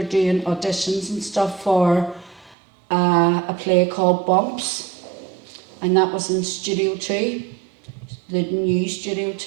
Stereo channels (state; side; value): drops out; left; at 2.6 s